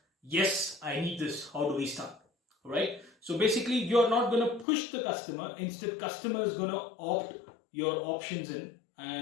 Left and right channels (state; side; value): drops out; right; at 4.7 s